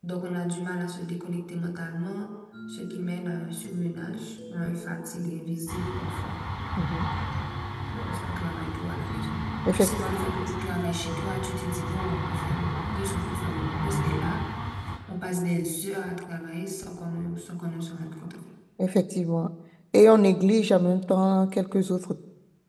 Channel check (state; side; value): identical; both; correlation 1.00